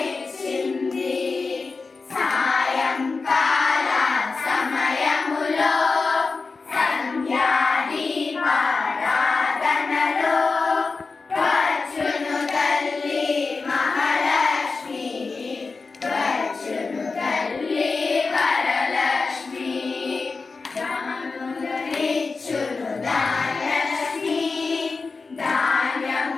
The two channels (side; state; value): right; quieter; 4.2 dB